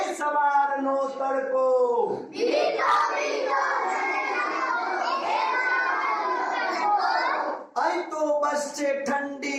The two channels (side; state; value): both; identical; correlation 1.00